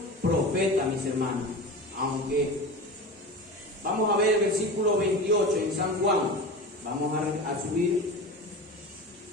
profeta, mis hermanos. Aunque vamos a ver el versículo 28 en San Juan. Vamos a subir.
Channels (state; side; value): normal; both; correlation 0.30